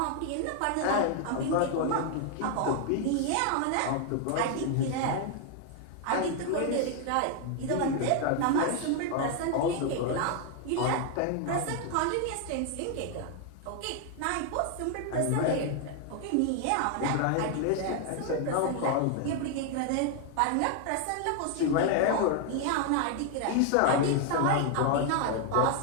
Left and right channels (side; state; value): both; different; correlation 0.00